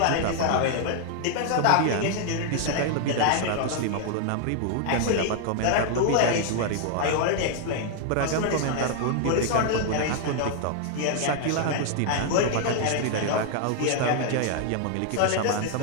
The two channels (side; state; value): both; different; correlation 0.00